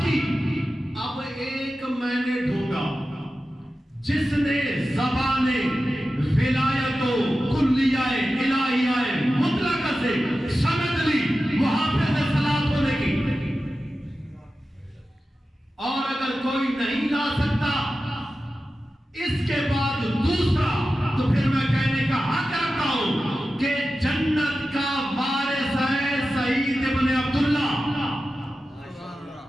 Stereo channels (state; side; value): normal; both; correlation 0.93